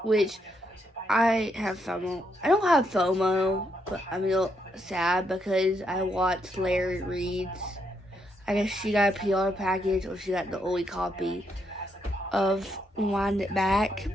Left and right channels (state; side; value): normal; both; correlation 0.77